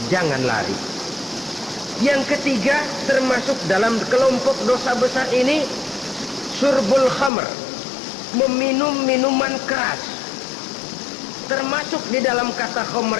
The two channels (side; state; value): right; drops out; at 7.3 s